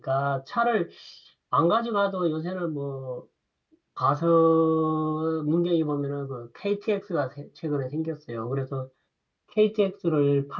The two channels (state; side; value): identical; both; correlation 1.00